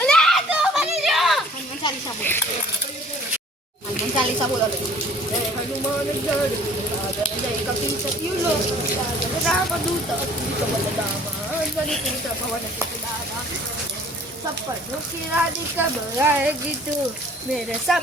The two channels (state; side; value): normal; both; correlation 0.53